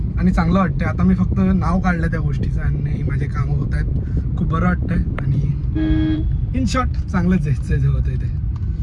आणि चांगलं वाटतंय आता. मी फक्त नाव काढलं त्या गोष्टीचं आणि माझे कामं होत आहेत. खूप बरं वाटतंय. आणि इन शॉर्ट चांगलंच जायचं जे होतं इथे.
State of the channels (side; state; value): both; identical; correlation 1.00